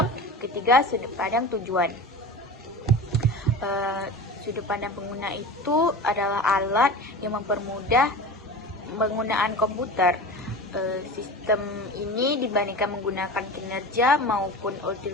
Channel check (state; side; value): normal; both; correlation 0.32